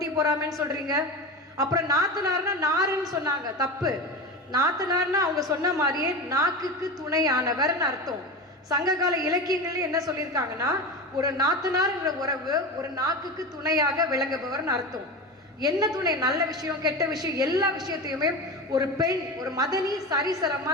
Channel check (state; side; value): normal; both; correlation 0.26